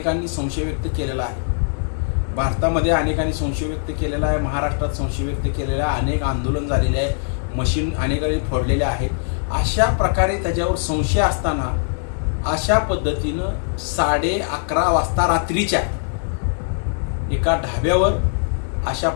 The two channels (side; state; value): right; silent; digital silence